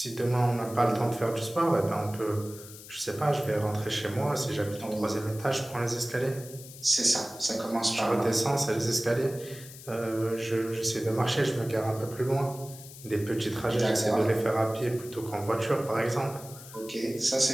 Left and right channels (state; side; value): noise; left; hiss, 16 dB below the sound